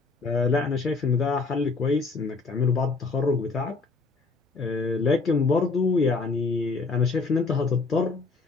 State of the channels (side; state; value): right; quieter; 4.1 dB